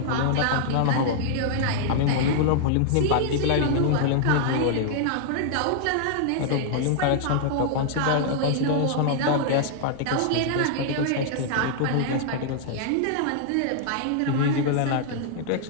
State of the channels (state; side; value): different; both; correlation -0.01